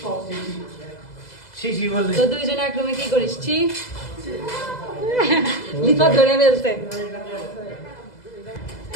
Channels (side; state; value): right; late; 2.0 ms